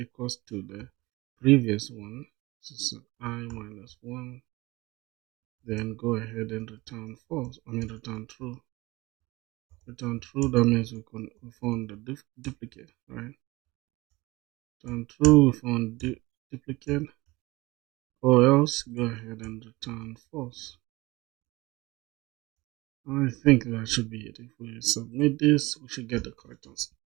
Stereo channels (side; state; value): left; quieter; 21.4 dB